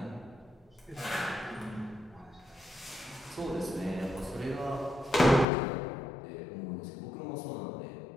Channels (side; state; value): right; drops out; at 5.5 s